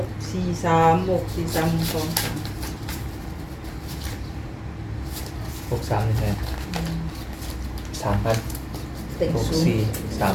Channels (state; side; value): identical; both; correlation 1.00